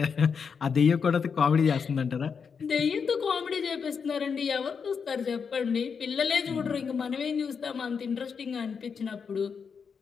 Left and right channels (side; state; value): right; quieter; 6.1 dB